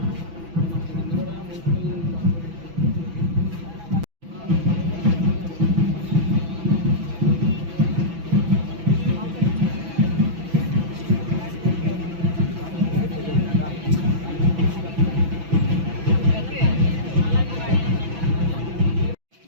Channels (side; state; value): left; late; 6.0 ms